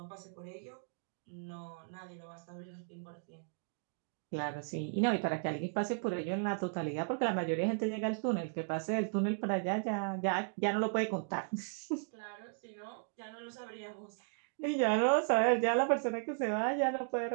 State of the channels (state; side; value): silent; left; digital silence